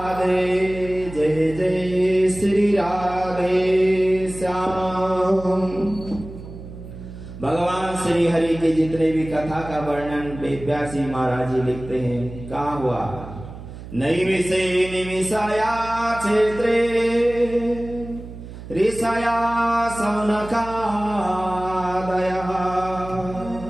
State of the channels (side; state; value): right; noise; hum, 13 dB below the sound